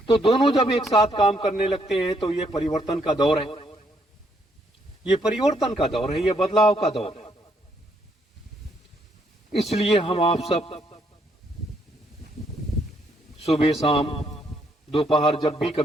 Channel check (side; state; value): both; normal; correlation 0.72